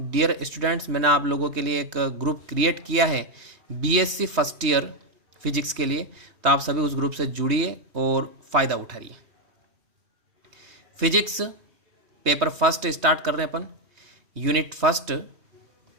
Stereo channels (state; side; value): late; left; 3.1 ms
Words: स्टूडेंट्स, मैंने आप लोगों के लिए एक ग्रुप क्रिएट किया है बीएससी फर्स्ट ईयर फिजिक्स के लिए, तो आप सभी उस ग्रुप से जुड़िए और फ़ायदा उठाइए. फिजिक्स पेपर फर्स्ट स्टार्ट कर रहे हैं अपन. यूनिट